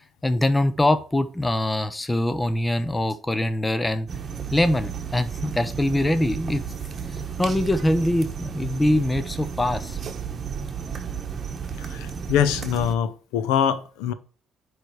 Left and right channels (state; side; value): normal; both; correlation 0.83